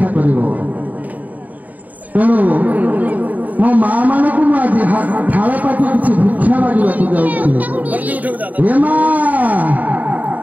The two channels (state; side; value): late; left; 0.076 ms